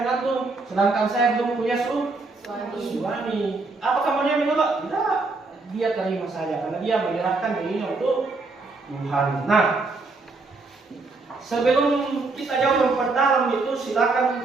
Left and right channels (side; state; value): left; quieter; 3.7 dB